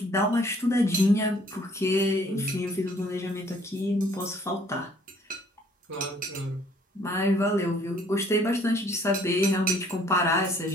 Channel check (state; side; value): normal; both; correlation 0.59